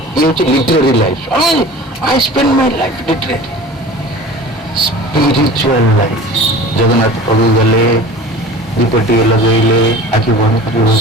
ଇଏ ହଉଛି literary life. I spend my life literally. Spiritual life. Jagannath ପ୍ରଭୁ ଗଲେ, ଦୀପଟିଏ ଲଗେଇଲେ, ଆଖି ବନ୍ଦ କରି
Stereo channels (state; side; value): normal; both; correlation 0.40